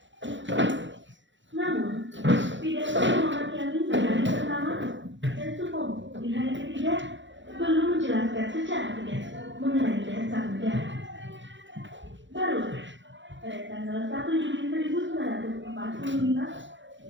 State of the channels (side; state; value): left; late; 0.54 ms